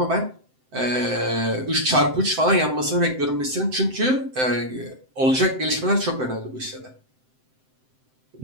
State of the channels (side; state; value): left; late; 7.7 ms